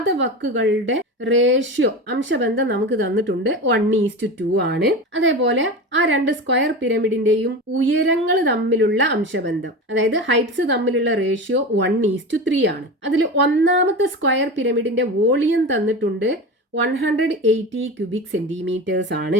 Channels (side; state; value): both; normal; correlation 0.27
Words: ratio അംശബന്ധം നമുക്ക് തന്നിട്ടുണ്ട്. 1:2 ആണ്. അതേപോലെ ആ രണ്ട് square പിരമിഡിന്റെയും ഉയരങ്ങൾ തമ്മിലുള്ള അംശബന്ധം, അതായത് ഹൈറ്റ്സ് തമ്മിലുള്ള റേഷ്യോ 1:3 ആണ്. അതിൽ ഒന്നാമത്തെ സ്ക്വയർ പിരമിഡിന്റെ വോളിയം തന്നിട്ടുണ്ട് 180 ക്യൂബിക് സെന്റിമീറ്റേഴ്സ്